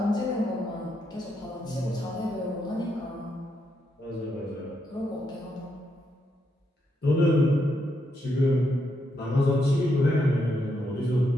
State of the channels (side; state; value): both; normal; correlation 0.79